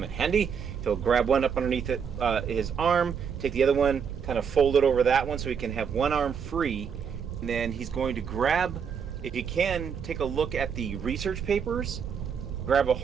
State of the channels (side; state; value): left; quieter; 6.9 dB